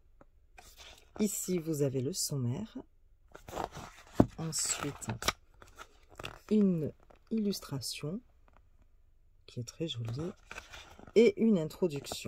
Ici, vous avez le sommaire. Ensuite, une illustration qui est très jolie et une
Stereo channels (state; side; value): identical; both; correlation 1.00